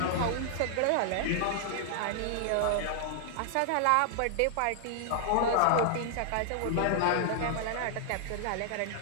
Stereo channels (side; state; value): both; different; correlation -0.01